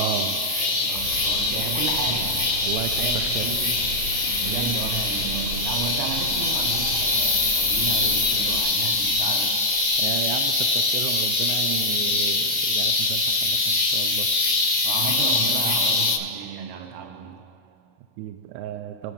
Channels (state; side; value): late; left; 33 ms